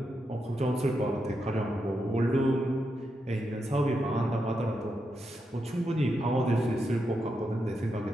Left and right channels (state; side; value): normal; both; correlation 0.84